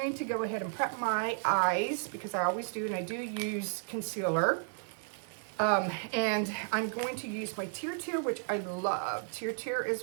to go ahead and prep my eyes, because I always do, and I do use concealer. And I'm going to use my Tear, which I love, Tear as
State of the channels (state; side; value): silent; left; digital silence